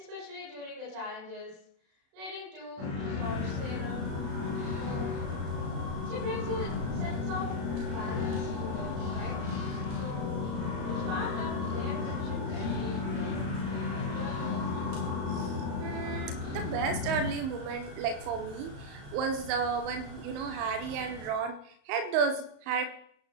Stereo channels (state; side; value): late; left; 35 ms